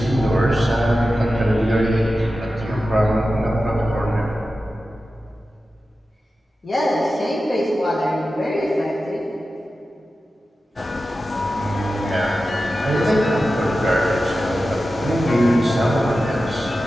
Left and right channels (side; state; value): both; normal; correlation 0.93